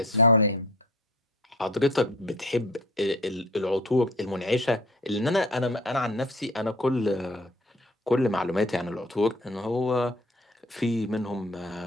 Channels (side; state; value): both; normal; correlation 0.46